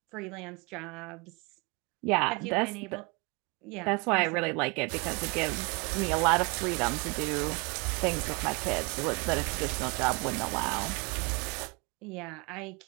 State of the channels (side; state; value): left; quieter; 29.6 dB